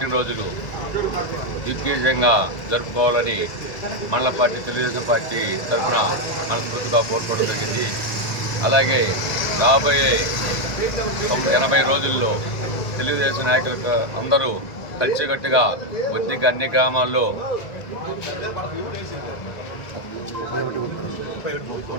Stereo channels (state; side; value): late; right; 1.5 ms